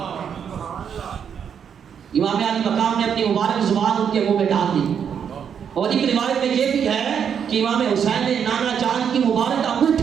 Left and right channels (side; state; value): left; quieter; 7.7 dB